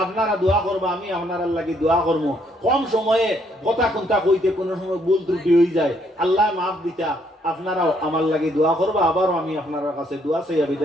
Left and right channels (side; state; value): both; normal; correlation 0.69